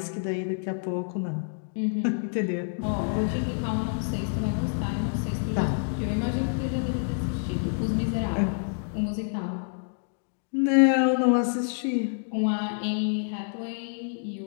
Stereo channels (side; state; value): right; silent; digital silence